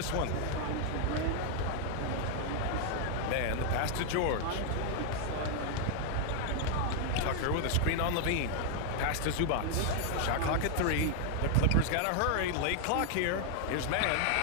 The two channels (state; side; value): different; both; correlation 0.00